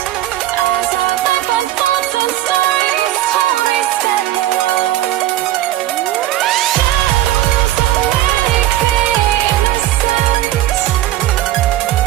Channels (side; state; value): left; quieter; 13.9 dB